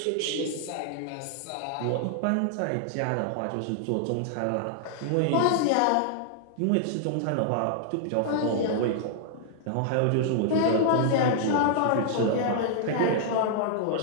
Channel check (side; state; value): both; different; correlation -0.01